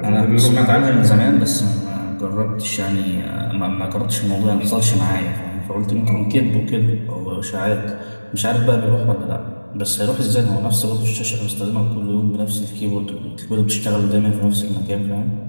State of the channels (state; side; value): inverted; both; correlation -1.00